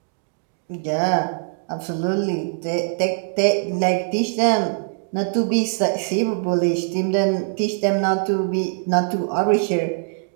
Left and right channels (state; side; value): silent; left; digital silence